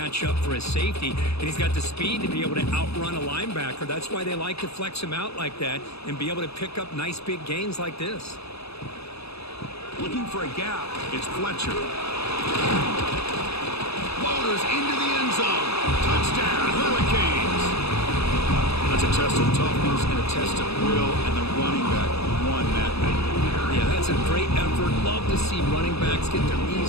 up for his safety, and he's got the speed to be able to outrun a linebacker. That's why they like to flex him out like that and be able to pick up nice big gains like this. Looking for a gap. It's Fletcher. Floaters into the end zone. Touchdown, Hurricanes. That's a test of toughness and a test of will, and the running back won that thing. Yeah, that's a great effort. Love to see running backs get their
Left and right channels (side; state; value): right; late; 0.79 ms